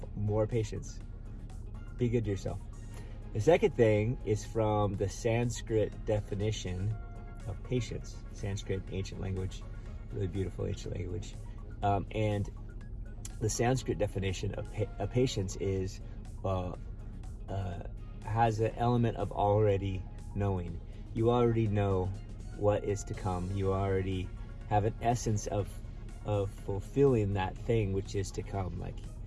more patience. Be good to yourself. The second thing is from the Sanskrit definition of patience. Sanskrit, ancient language, really beautiful ancient language. And the Sanskrit definition of patience is has an element of already knowing. You already know what is to come. You already have an essence of fulfilling that thing which is to come.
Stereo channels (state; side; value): identical; both; correlation 1.00